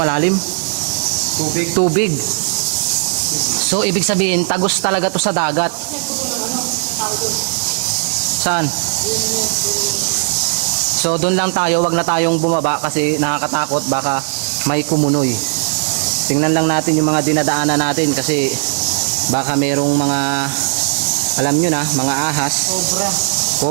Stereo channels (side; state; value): left; silent; 57 dB below the other